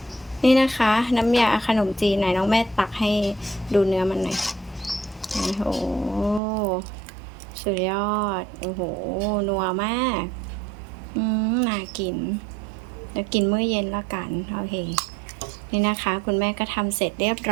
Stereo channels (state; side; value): drops out; left; at 6.4 s